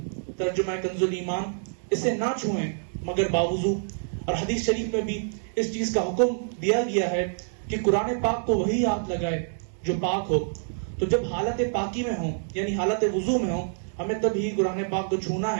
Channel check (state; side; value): silent; left; digital silence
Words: ترجمہ کنز الایمان، اسے نہ چھوئیں مگر باوضو۔ اور حدیث شریف میں بھی اس چیز کا حکم دیا گیا ہے کہ قرآن پاک کو وہی ہاتھ لگائے جو پاک ہو۔ تو جب حالت پاکی میں ہوں یعنی حالت وضو میں ہوں، ہمیں تب ہی قرآن پاک کو چھونا